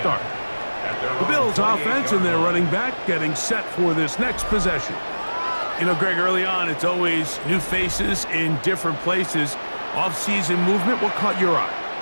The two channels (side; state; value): both; inverted; correlation -1.00